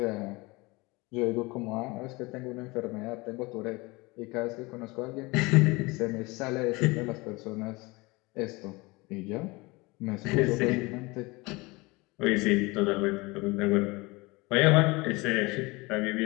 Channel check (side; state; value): right; quieter; 24.0 dB